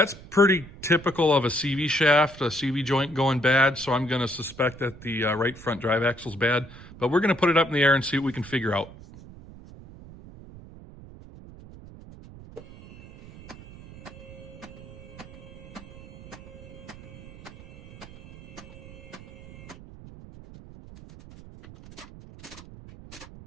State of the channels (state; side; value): noise; right; rumble, 18 dB below the sound